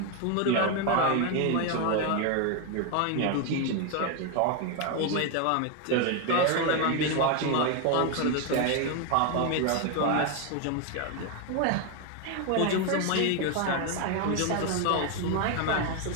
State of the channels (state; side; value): different; both; correlation 0.01